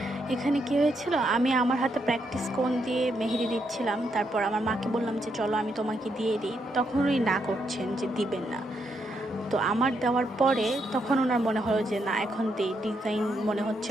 এখানে কি হয়েছিল, আমি আমার হাতে প্র্যাকটিস কোন দিয়ে মেহেদি দিচ্ছিলাম। তারপর আমার মাকে বললাম যে চলো আমি তোমাকে দিয়ে দিই, তখন উনি না করছেন যে দিবেন না। তো আমার দেওয়ার পরে তখন ওনার মনে হলো যে না, এখন দিই, ডিজাইন মনে হচ্ছে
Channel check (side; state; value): both; normal; correlation 0.78